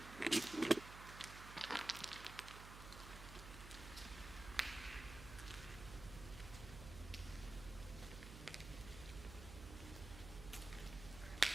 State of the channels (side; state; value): right; noise; hum, 11 dB below the sound